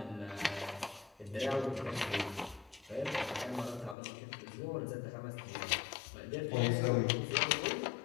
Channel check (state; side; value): drops out; right; at 4.0 s